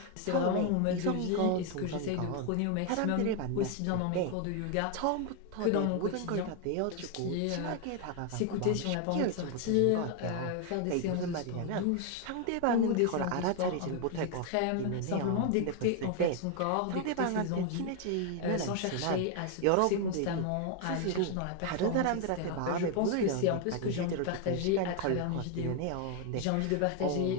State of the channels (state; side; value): different; both; correlation 0.01